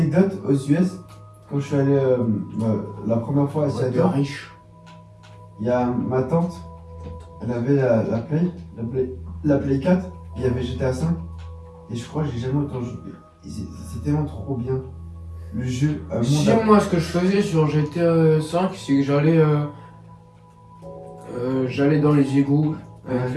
aux US. Quand je suis allé la première fois à Ouais, de Seattle, riche. il y a ma tante, elle avait la Play 4, il y avait GTA 5, et je crois que j'ai jamais autant joué. C'est tellement trop bien. Le jeu, un monde Si moi ce que je faisais sur GTA 5, c'est que j'allais dans les égouts avec Ouais.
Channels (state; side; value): identical; both; correlation 1.00